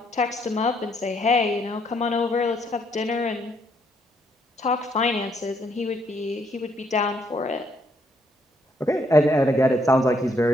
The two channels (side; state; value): both; normal; correlation 0.71